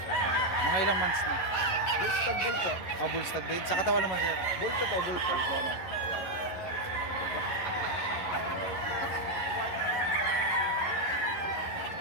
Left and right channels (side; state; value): right; late; 11 ms